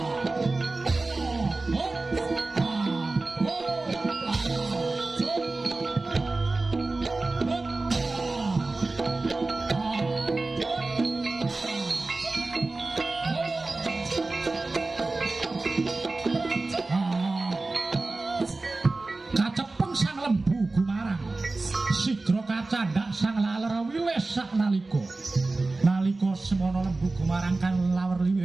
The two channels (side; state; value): left; quieter; 3.3 dB